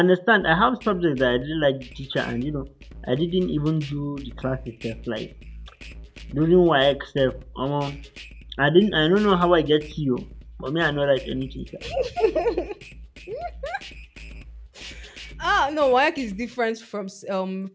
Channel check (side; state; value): both; identical; correlation 1.00